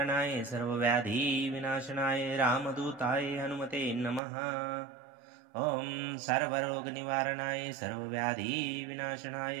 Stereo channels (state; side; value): drops out; left; at 4.2 s